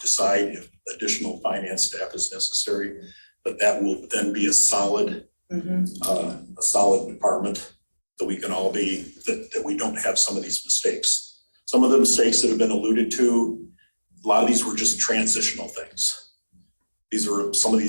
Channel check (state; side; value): inverted; both; correlation -1.00